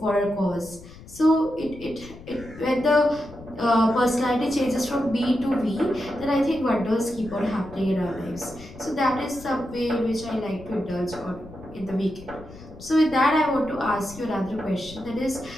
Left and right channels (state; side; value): noise; left; rumble, 17 dB below the sound